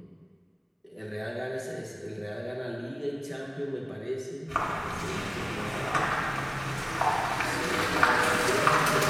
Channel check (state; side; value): identical; both; correlation 1.00